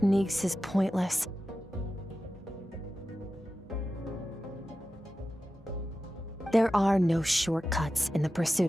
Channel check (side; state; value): both; normal; correlation 0.93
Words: is pointless. There are no shortcuts in the